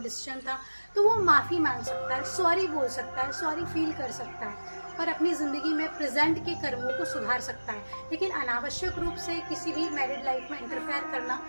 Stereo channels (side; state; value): both; inverted; correlation -1.00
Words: था, तो वो माफ़ी मांग सकता है, सॉरी बोल सकता है, सॉरी फील कर सकता है और अपनी ज़िंदगी में प्रेजेंट के कर्मों को सुधार सकता है। लेकिन अनावश्यक रूप से किसी भी मैरिड लाइफ में इंटरफेयर करना